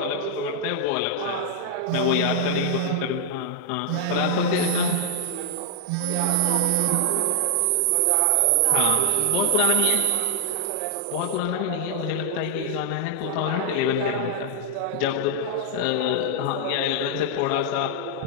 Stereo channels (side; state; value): both; different; correlation -0.01